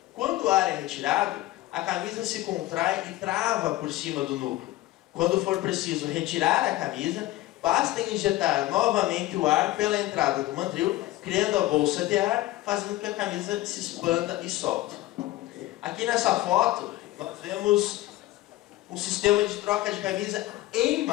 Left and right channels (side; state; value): right; quieter; 16.8 dB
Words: Quando o ar é retirado, a camisa se contrai e trava por cima do núcleo. Quando for preciso retirar a camisa, basta injetar novamente o ar pela entrada do mandril, criando a bolsa de ar, fazendo com que a camisa se expanda e solte. Aqui nessa foto, nós vemos um sistema de troca de camisa em